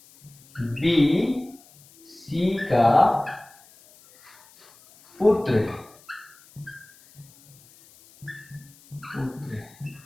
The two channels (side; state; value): left; noise; hiss, 26 dB below the sound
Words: बी सी का पुत्र है,